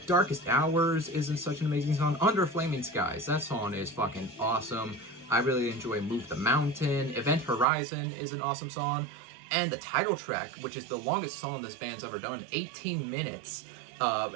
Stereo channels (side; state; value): left; drops out; at 7.7 s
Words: Darkest Hours is such an amazing song. Under Flaming Skies, that song is fucking awesome. I really enjoy Move the Mountain. Event Horizon is an awesome song. And the title track, which is the longest song this band's ever done, 18 minutes.